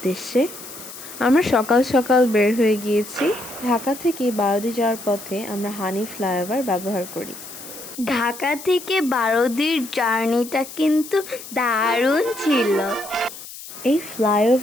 আমরা সকাল সকাল বের হয়ে গিয়েছি। ঢাকা থেকে বারোদি যাওয়ার পথে আমরা হানি ফ্লাইওভার ব্যবহার করি। ঢাকা থেকে বারোদির জার্নিটা কিন্তু দারুণ ছিল। এই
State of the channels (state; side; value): noise; left; hiss, 14 dB below the sound